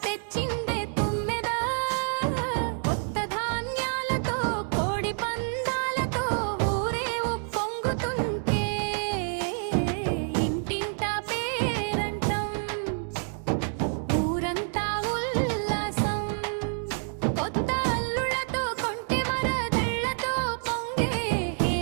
తెచ్చిందే తుమ్మెద కొత్త ధాన్యాలతో కోడి పందాలతో ఊరే ఉప్పొంగుతుంటే ఇంటింట పేరంటం ఊరంతా ఉల్లాసం కొత్త అల్లులతో కొంటె మరదళ్ళతో పొంగే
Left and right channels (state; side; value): silent; left; 59 dB below the other